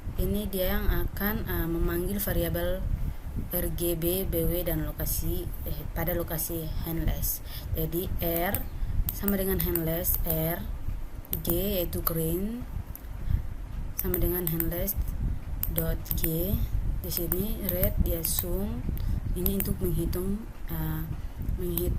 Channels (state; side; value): identical; both; correlation 1.00